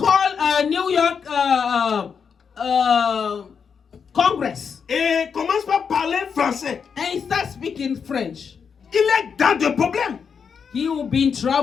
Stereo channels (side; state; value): right; quieter; 6.4 dB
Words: New York Congress. Et commence par parler français. And he starts speaking French. Il est dans des problèmes. He will be in